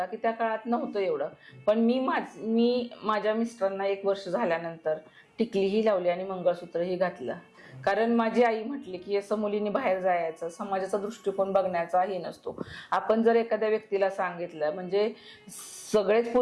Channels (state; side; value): identical; both; correlation 1.00